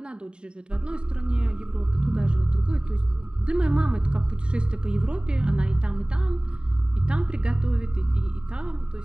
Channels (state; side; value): late; left; 0.050 ms